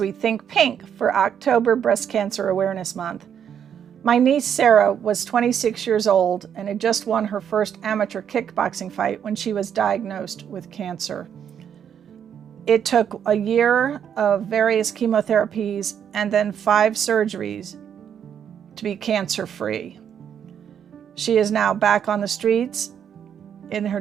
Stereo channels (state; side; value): quieter; left; 8.6 dB